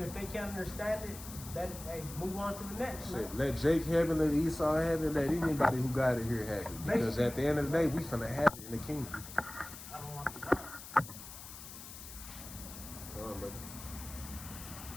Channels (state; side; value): noise; left; hiss, 13 dB below the sound